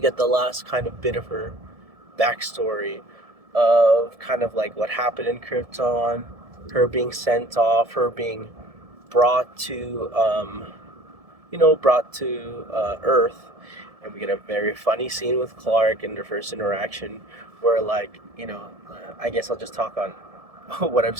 the last kind of bit of her backstory of kind of like what happened in Krypton, her being sent off, her being brought to, Earth, and we get a very funny scene with Clark in their first interaction, where like, I guess I'll just talk on what I've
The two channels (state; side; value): late; left; 1.7 ms